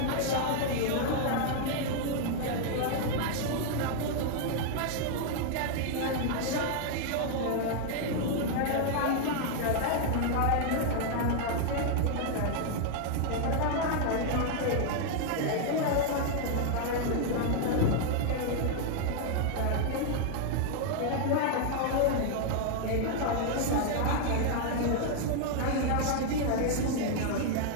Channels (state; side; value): different; both; correlation 0.00